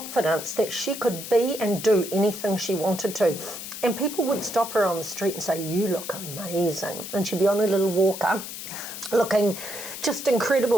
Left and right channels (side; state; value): left; noise; hiss, 9 dB below the sound